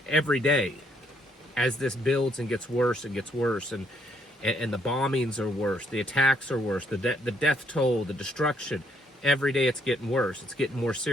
every day as this builds and gets worse and gets worse, and the bombings are worse, the attacks are worse, the death toll, the destruction. Every day it's getting worse. It's getting more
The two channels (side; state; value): both; normal; correlation 0.71